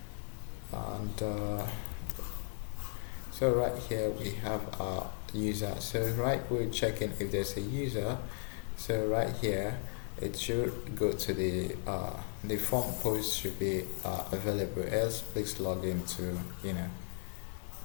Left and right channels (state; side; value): silent; right; 54 dB below the other